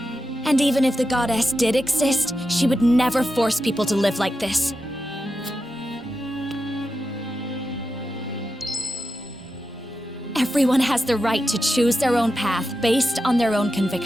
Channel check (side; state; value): both; normal; correlation 0.89